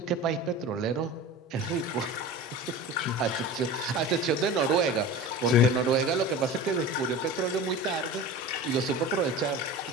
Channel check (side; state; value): both; normal; correlation 0.33